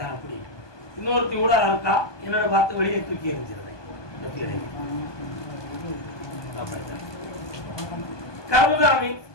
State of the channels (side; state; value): right; late; 1.2 ms